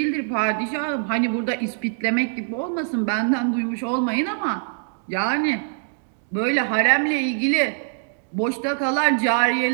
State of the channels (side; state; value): left; silent; digital silence